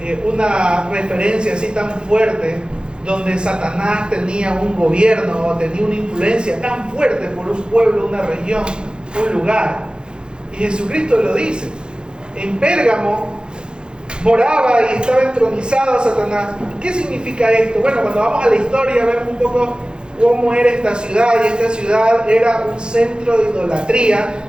una referencia así tan fuerte, donde Satanás tenía un gobierno o tenía una influencia tan fuerte por un pueblo, una región, un lugar. Y Jesucristo lo dice. En Pérgamo moraba y estaba entronizado Satanás. ¿Qué significa esto? Bueno, cuando vamos a la historia vemos un poco cómo era esta ciudad, y esta ciudad era un centro de idolatría,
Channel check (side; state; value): left; late; 0.049 ms